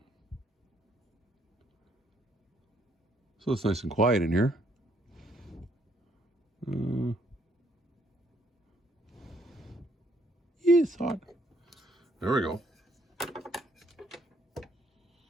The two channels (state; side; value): normal; both; correlation 0.69